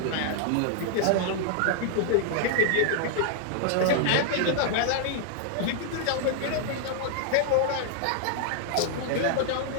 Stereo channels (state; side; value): different; both; correlation -0.01